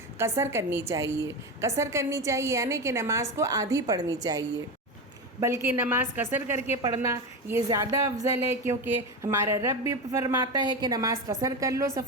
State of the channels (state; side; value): normal; both; correlation 0.19